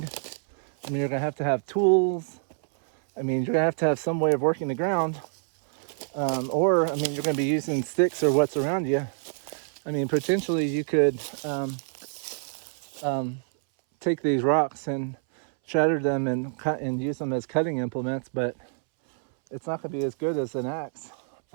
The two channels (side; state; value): left; silent; 60 dB below the other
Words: I mean, you're going to have tools. I mean, you're going to have some way of working the ground. Or, I mean, you're going to be using sticks or what's around you. I mean, potentially you could take these rocks and shatter them and cut and use them as cutting implements, but it's not going to be as good as an axe.